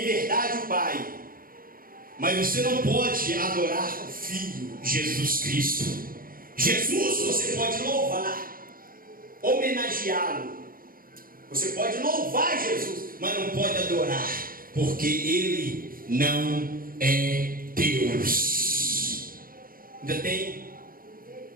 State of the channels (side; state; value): left; late; 0.41 ms